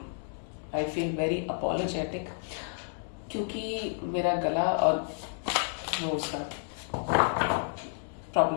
आई फील वेरी अपोलोजेटिक, क्योंकि मेरा गला और वो उसका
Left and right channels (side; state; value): right; silent; 57 dB below the other